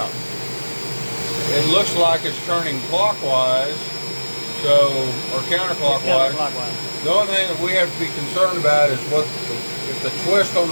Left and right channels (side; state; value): both; inverted; correlation -1.00